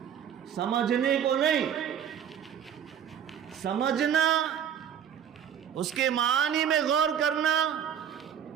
سمجھنے کو نہیں۔ سمجھنا، اس کے معانی میں غور کرنا،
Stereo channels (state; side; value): quieter; left; 8.8 dB